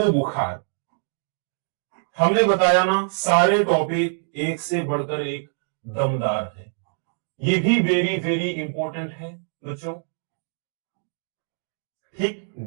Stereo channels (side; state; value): left; silent; digital silence